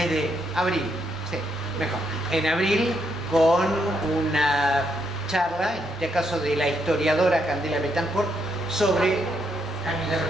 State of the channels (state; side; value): normal; both; correlation 0.77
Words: de abril, sí, mejor. En abril, con una charla, en este caso de la historiadora Candela Betancourt, sobre